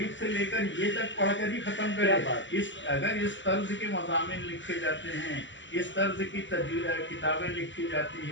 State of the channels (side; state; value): right; late; 0.54 ms